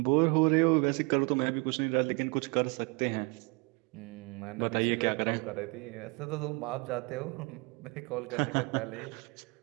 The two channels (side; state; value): left; quieter; 29.5 dB